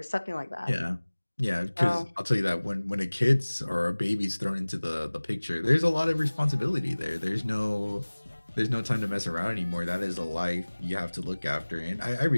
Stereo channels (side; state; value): both; inverted; correlation -1.00